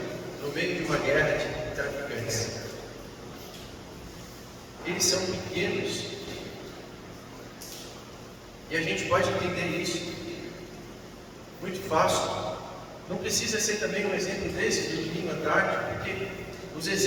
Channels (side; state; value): both; identical; correlation 1.00